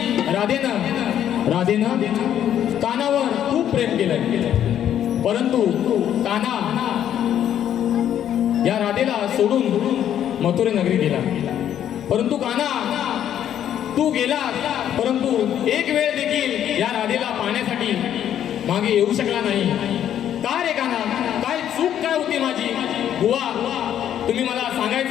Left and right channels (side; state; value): right; quieter; 10.3 dB